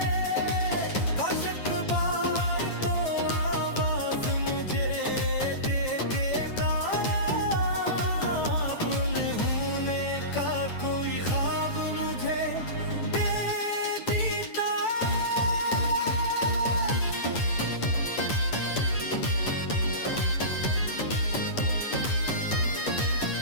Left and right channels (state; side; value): late; right; 9.0 ms